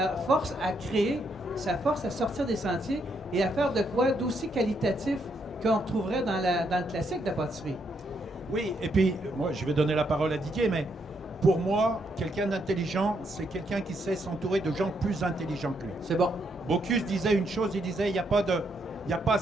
force à créer, ça force à sortir des sentiers et à faire de quoi d'aussi qualitatif qu'on retrouverait dans le classique de la pâtisserie. Oui, et puis moi je vais donner la parole à Didier, mais pour moi, quelqu'un d'intelligent, c'est quelqu'un qui sait s'entourer de gens plus intelligents que lui. C'est bon. Bocuse disait une chose, il disait il n'y a pas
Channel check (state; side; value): normal; both; correlation 0.76